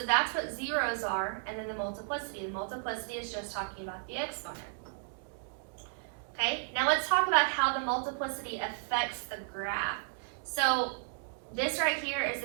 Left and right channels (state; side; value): silent; left; digital silence